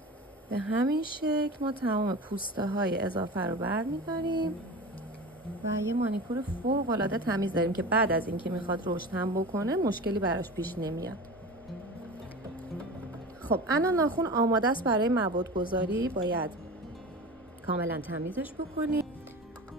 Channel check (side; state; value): both; normal; correlation 0.32